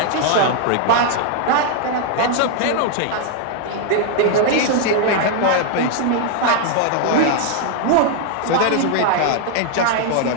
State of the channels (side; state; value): both; different; correlation 0.00